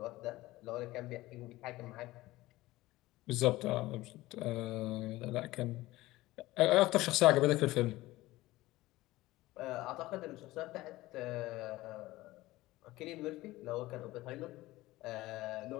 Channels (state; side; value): quieter; right; 18.1 dB